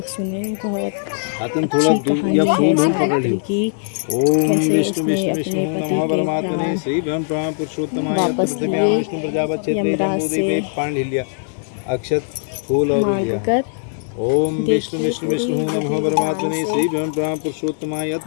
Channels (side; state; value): right; silent; digital silence